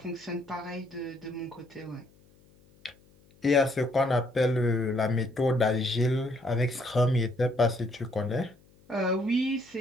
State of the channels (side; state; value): left; noise; hum, 29 dB below the sound